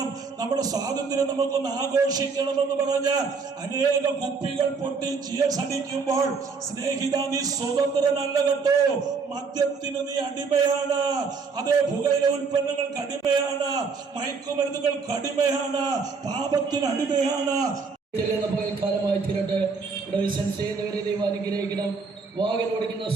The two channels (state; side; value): quieter; left; 4.9 dB